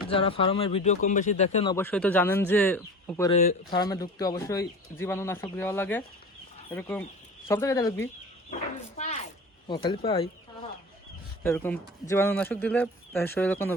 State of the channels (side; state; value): both; normal; correlation 0.35